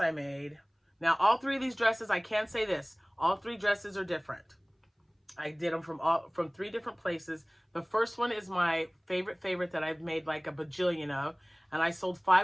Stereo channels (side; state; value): both; identical; correlation 1.00